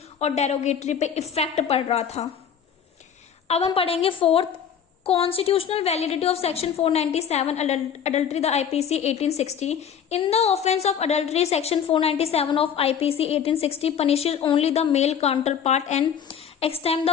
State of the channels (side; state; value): right; quieter; 8.0 dB